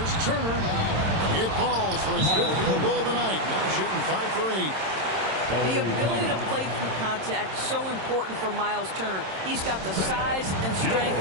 Turner. It falls for his 5th field goal of the night. Now shooting 5 for 8. The ability to play through contact, so important for Miles Turner. He's got the size and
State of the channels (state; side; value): late; left; 26 ms